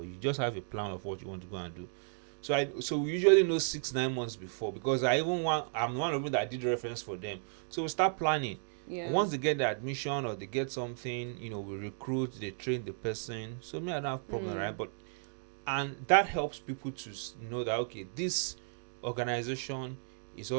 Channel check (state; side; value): silent; left; 55 dB below the other